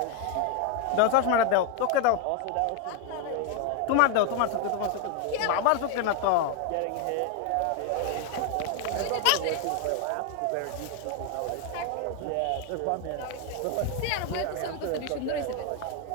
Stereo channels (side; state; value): both; different; correlation 0.01